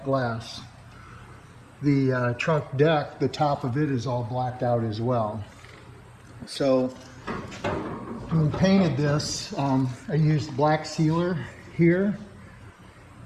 glass. The trunk deck, the top of it is all blacked out as well. So when we painted this, I used black sealer here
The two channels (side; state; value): both; identical; correlation 1.00